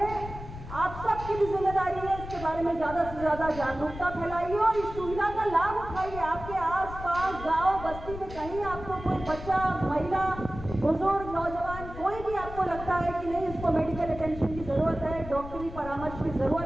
आप सबकी भी जिम्मेदारी है इसके बारे में ज़्यादा से ज़्यादा जागरूकता फैलाइए और इस सुविधा का लाभ उठाइए। आपके आसपास गांव बस्ती में कहीं आपको कोई बच्चा, महिला, बुजुर्ग, नौजवान, कोई भी आपको लगता है कि नहीं इसको मेडिकल अटेंशन की ज़रूरत है, डॉक्टरी परामर्श की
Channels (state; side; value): noise; left; rumble, 11 dB below the sound